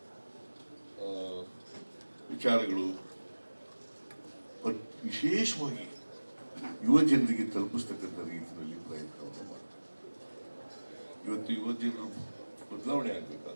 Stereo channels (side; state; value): both; inverted; correlation -1.00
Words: ವಿಚಾರಗಳು ವಿಶೇಷವಾಗಿ ಯುವ ಜನರಿಗೆ ತಲುಪಿಸ್ತಕ್ಕಂಥ ರೀತಿಯಲ್ಲಿ ಪ್ರಯತ್ನವನ್ನು ಮಾಡ್ತಾರೆ. ಇವತ್ತು ಯುವ ಜನರು ಬದಲಾವಣೆ